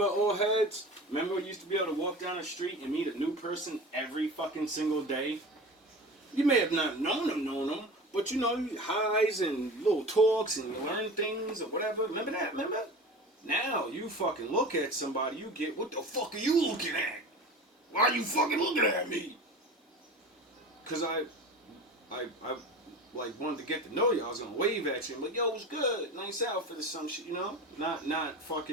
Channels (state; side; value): normal; both; correlation 0.34